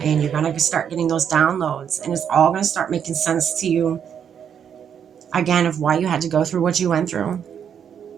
You're going to start getting those downloads, and it's all going to start making sense to you, again, of why you had to go through what you went through.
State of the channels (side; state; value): left; quieter; 8.2 dB